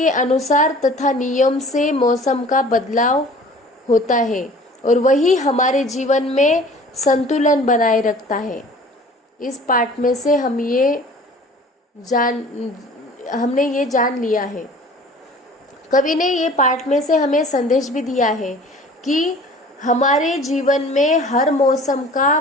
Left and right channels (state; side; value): normal; both; correlation 0.47